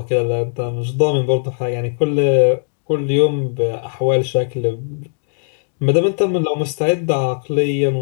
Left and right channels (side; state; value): right; silent; 67 dB below the other